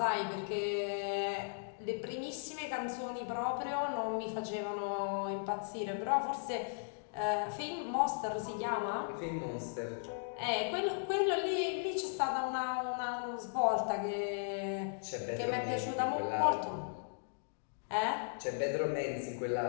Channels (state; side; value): silent; right; digital silence